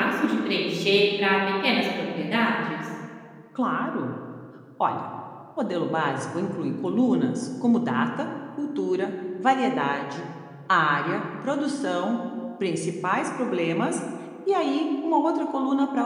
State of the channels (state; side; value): identical; both; correlation 1.00